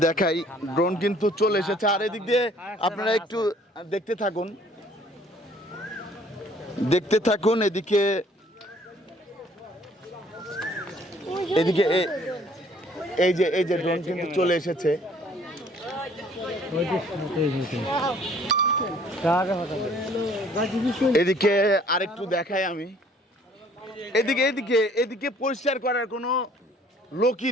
দেখাই, ড্রোন কিন্তু চলে এসেছে। আর এদিক দিয়ে আপনারা একটু দেখতে থাকুন, এদিকে এই যে ড্রোন কিন্তু চলে এসেছে। এদিকে আরেকটু দেখাই আমি, এদিকে পরিষ্কার করার কোনো লোকই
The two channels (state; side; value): normal; both; correlation 0.57